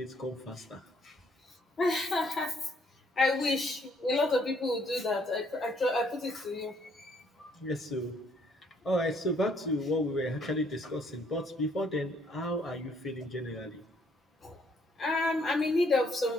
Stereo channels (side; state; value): both; normal; correlation 0.67